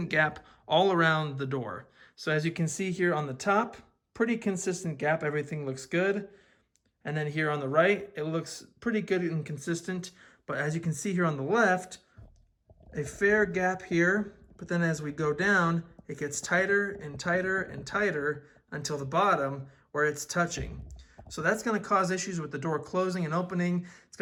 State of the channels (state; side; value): identical; both; correlation 1.00